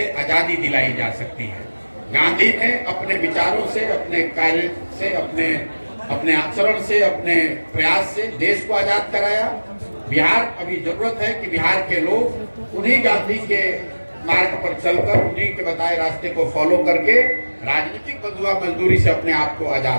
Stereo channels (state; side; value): inverted; both; correlation -1.00